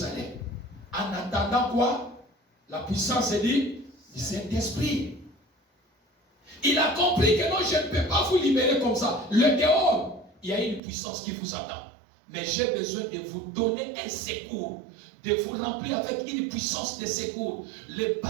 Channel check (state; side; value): drops out; left; at 10.8 s